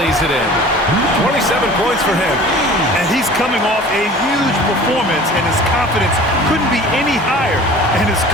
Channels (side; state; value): both; normal; correlation 0.43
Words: it in. 27 points for him. And he's coming off a huge performance, and his confidence couldn't be any higher. And his